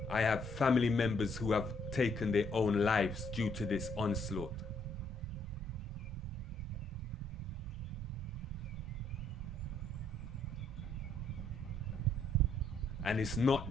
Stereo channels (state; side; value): normal; both; correlation 0.69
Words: I have family members who have taken their own lives due to this onslaught. And it's